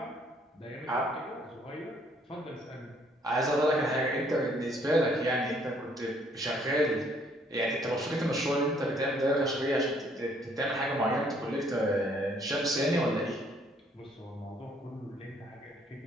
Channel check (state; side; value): normal; both; correlation 0.64